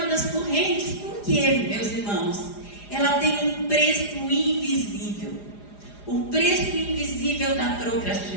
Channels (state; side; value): late; right; 4.9 ms